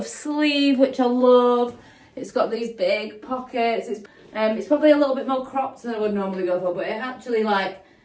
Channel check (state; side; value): identical; both; correlation 1.00